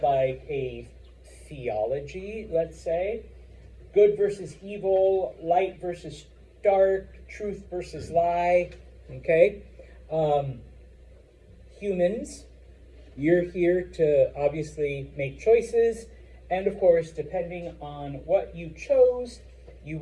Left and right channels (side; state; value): both; identical; correlation 1.00